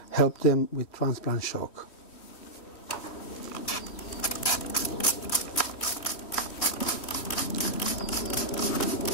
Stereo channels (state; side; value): late; right; 3.1 ms